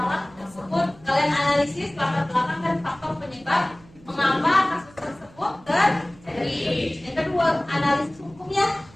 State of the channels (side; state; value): right; noise; hum, 25 dB below the sound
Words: tersebut? Kalian analisis latar belakang dan faktor penyebab mengapa kasus tersebut terjadi. Yang kedua, analisis hukumnya.